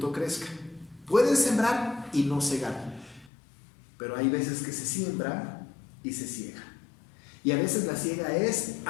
crezca. Pueden sembrar y no cegar, pero hay veces que se siembra y se ciega. Y a veces la siega es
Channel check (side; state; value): right; drops out; at 3.3 s